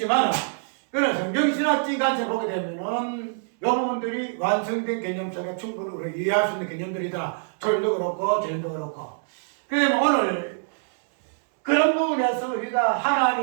그런 성경신학적인 관점을 보게 되면은 이 부분들이 완성된 개념 속에 충분히 우리가 이해할 수 있는 개념들이다. 초림도 그렇고 재림도 그렇고. 그러면 오늘 그런 부분에서 우리가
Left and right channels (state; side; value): silent; left; digital silence